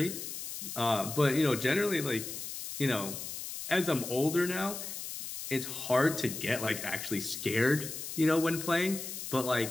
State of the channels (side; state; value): left; noise; hiss, 7 dB below the sound